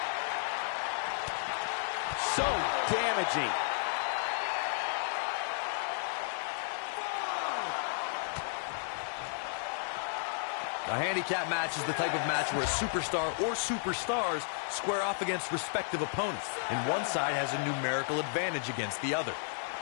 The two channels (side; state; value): right; silent; digital silence